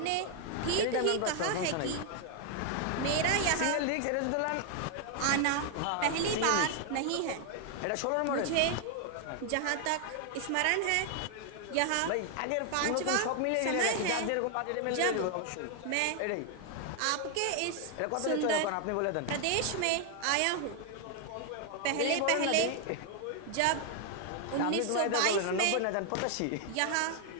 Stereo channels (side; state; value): both; different; correlation 0.00